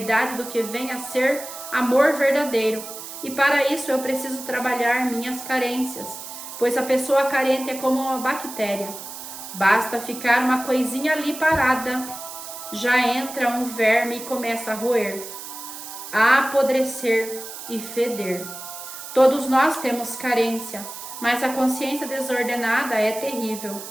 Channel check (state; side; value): noise; right; hiss, 11 dB below the sound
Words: do que vem a ser amor verdadeiro. E para isso eu preciso trabalhar minhas carências, pois a pessoa carente é como uma bactéria. Basta ficar uma coisinha ali parada, já entra um verme e começa a roer, a apodrecer e feder. Todos nós temos carência, mas a consciência desordenada é terrível.